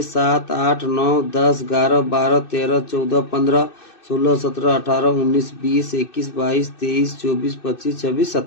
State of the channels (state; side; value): late; right; 2.6 ms